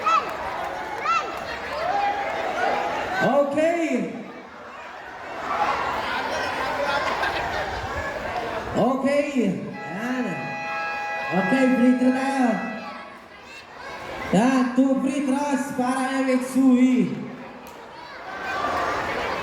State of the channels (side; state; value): both; identical; correlation 1.00